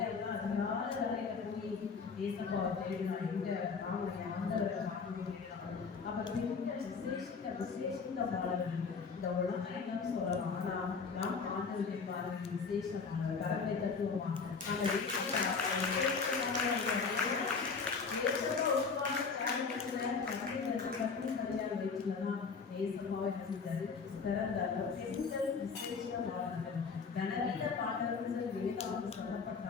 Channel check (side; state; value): right; quieter; 5.1 dB